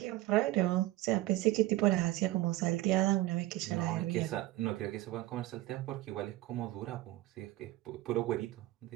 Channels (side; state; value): left; quieter; 16.2 dB